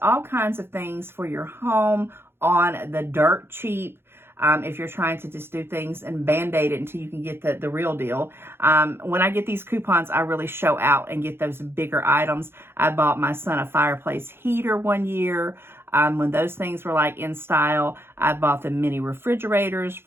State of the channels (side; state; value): left; late; 0.11 ms